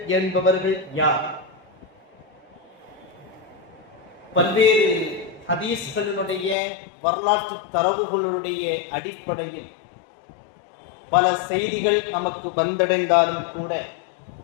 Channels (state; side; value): drops out; right; at 6.6 s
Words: என்பவர்கள் யார்? பல்வேறு ஹதீஸ்களினுடைய வரலாற்று தரவுகளுடைய அடிப்படையில் பல செய்திகள் நமக்கு வந்தடைந்தாலும் கூட,